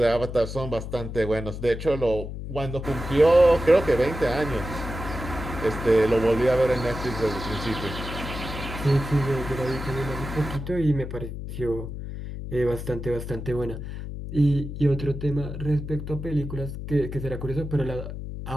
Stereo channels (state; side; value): noise; left; hum, 8 dB below the sound